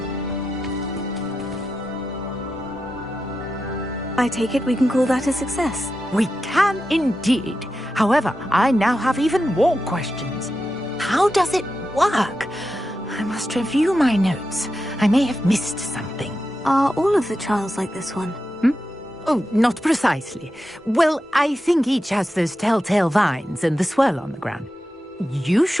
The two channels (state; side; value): normal; both; correlation 0.89